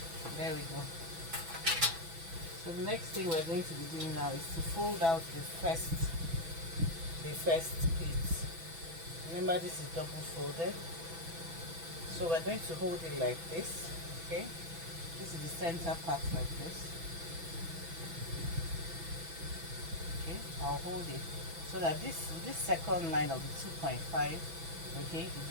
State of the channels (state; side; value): late; left; 6.0 ms